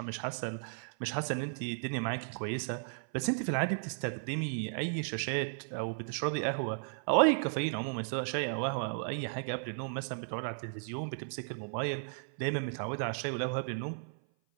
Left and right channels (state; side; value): silent; left; 55 dB below the other